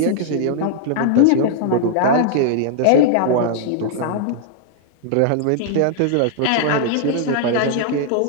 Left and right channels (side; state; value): both; different; correlation -0.01